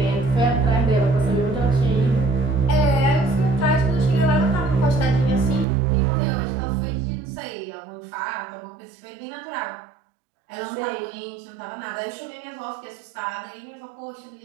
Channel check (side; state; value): left; drops out; at 5.7 s